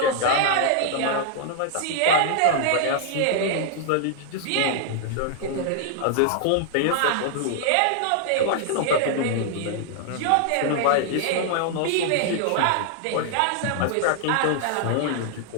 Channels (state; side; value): different; both; correlation 0.00